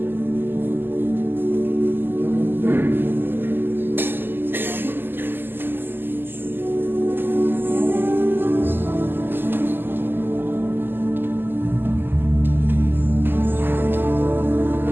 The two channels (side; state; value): left; late; 0.096 ms